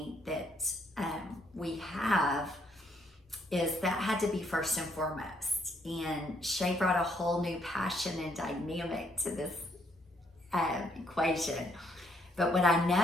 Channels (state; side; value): normal; both; correlation 0.70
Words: that we have, is that had to be first and foremost. And Shay brought a whole new passion and dynamic to this equation. But what I